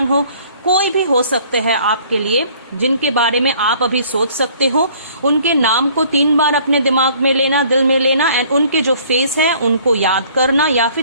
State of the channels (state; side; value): inverted; both; correlation -0.56